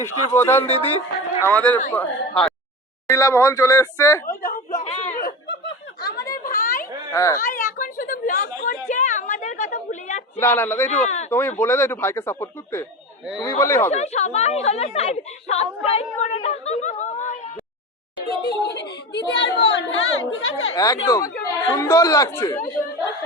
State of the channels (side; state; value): both; normal; correlation 0.26